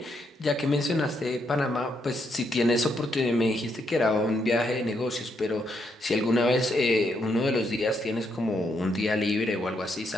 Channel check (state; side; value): normal; both; correlation 0.77